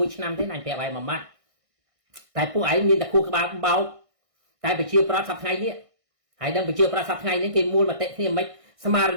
ឆ្នាំទេណាអញប្រាប់ឯងមួយម៉ាត់តែពួកឯងមានតែខួរក្បាលបោកតែប្រជាប្រដ្ឋសប្តាហ៍ថ្ងៃនេះហើយនឹងប្រជាប្រដ្ឋសប្តាហ៍ថ្ងៃនេះគេមូលមតិគ្នាមិនស្មារ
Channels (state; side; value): late; left; 1.6 ms